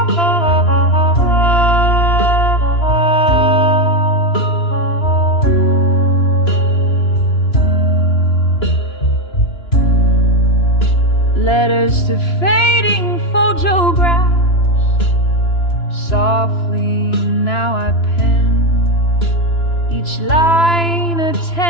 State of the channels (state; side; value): late; right; 2.9 ms